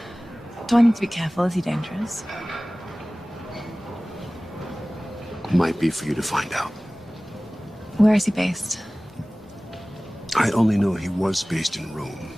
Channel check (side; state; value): both; normal; correlation 0.98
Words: Do I need to be careful? Is he dangerous? Might be for you to find out. Where is he based? I only know he was based in Rome.